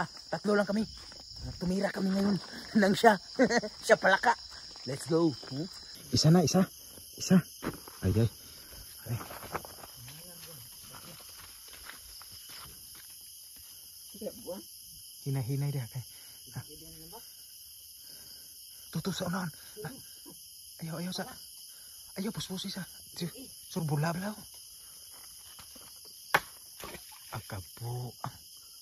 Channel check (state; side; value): identical; both; correlation 1.00